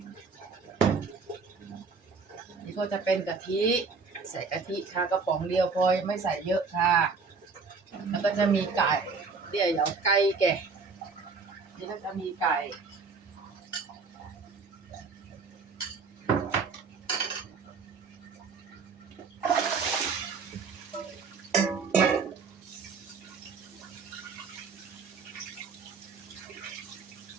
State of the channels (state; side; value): quieter; left; 4.8 dB